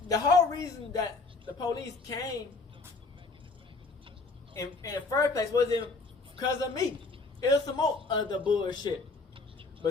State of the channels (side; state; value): right; quieter; 3.8 dB